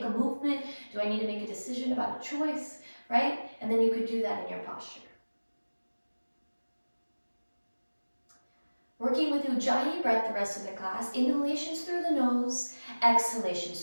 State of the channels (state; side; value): inverted; both; correlation -1.00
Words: a movement? Do I need to make a decision about a choice, right? And then you could do that in your posture. Working with Ujjayi breath the rest of the class, inhalations through the nose, exhalations